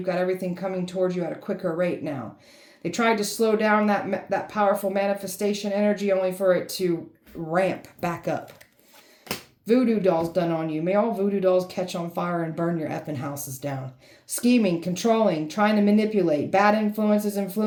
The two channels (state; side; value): identical; both; correlation 1.00